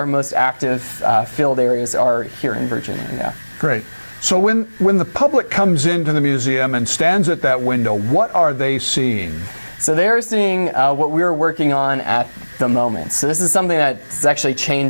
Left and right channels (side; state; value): both; inverted; correlation -1.00